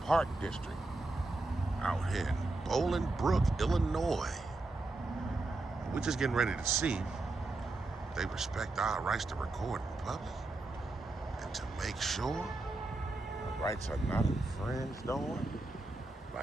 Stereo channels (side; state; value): left; quieter; 3.0 dB